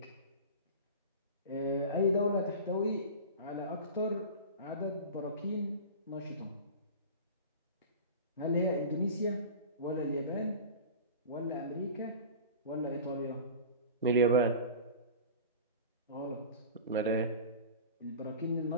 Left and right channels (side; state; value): both; inverted; correlation -0.34